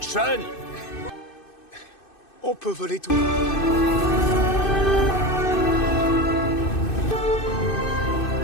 On peut voler tout.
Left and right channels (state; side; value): late; right; 2.6 ms